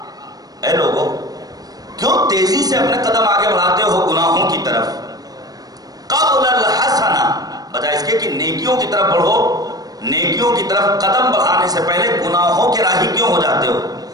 اے لوگو کیوں تیزی سے اپنے قدم آگے بڑھاتے ہو گناہوں کی طرف؟ قبل الحسنہ، بجائے اس کے کہ نیکیوں کی طرف بڑھو، نیکیوں کی طرف قدم بڑھانے سے پہلے گناہوں کے راہی کیوں ہو جاتے ہو؟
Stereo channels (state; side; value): late; left; 0.18 ms